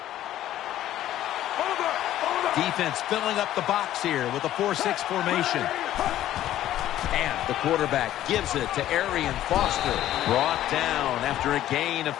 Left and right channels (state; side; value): quieter; right; 12.9 dB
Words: Defense filling up the box here with a 4-6 formation. And the quarterback gives it to Arian Foster. Brought down after a gain of